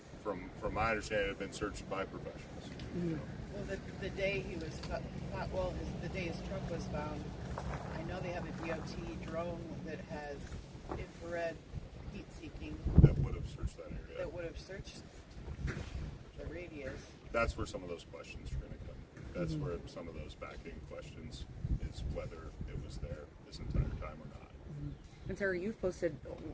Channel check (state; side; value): identical; both; correlation 1.00